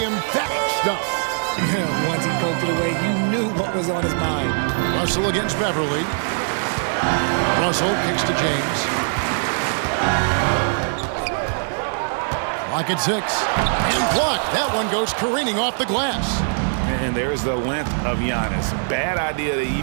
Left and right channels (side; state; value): left; silent; 65 dB below the other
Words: emphatic stuff. Yeah, once he poked it away, you knew what was on his mind. Russell against Beverly. Russell kicks to James. Lock at 6. And blocked. That one goes careening off the glass. And there's the length of Giannis. Bad idea to